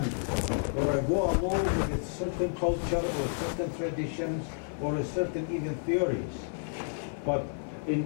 or I go along with a certain culture or certain traditions or a certain even theories. But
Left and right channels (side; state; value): right; silent; 56 dB below the other